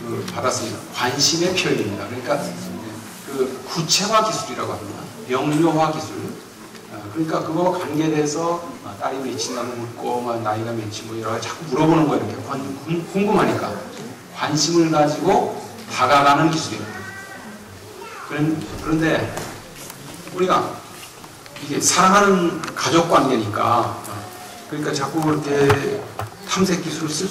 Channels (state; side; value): identical; both; correlation 1.00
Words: 받았습니다. 관심의 표현입니다. 그러니까 그 구체화 기술이라고 합니다. 명료화 기술. 그러니까 그거와 관계돼서 딸이 몇이냐고 묻고 나이가 몇이 뭐 여러 가지 자꾸 물어보는 거예요. 이렇게 궁금하니까 관심을 가지고 다가가는 기술입니다. 그런데 우리가 이게 사랑하는 가족 관계니까 그러니까 자꾸 이렇게 탐색 기술을 쓸